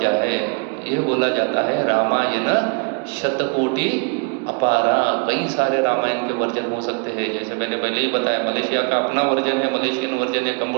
है। ये बोला जाता है रामायण शतकोटि अपारा। कई सारे रामायण के वर्जन हो सकते हैं, जैसे मैंने पहले ही बताया, मलेशिया का अपना वर्जन है, मलेशियन वर्जन है।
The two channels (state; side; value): quieter; left; 35.0 dB